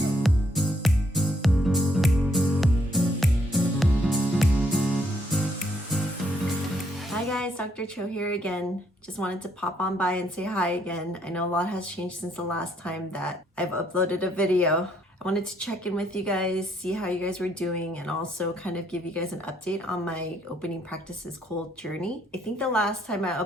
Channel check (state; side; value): normal; both; correlation 0.71